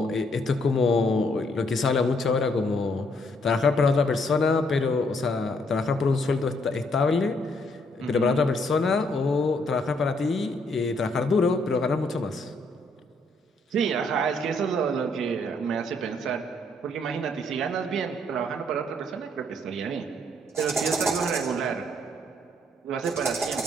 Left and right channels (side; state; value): both; normal; correlation 0.70